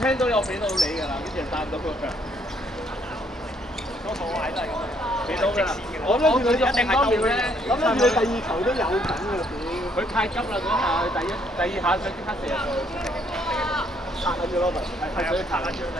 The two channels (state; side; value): normal; both; correlation 0.68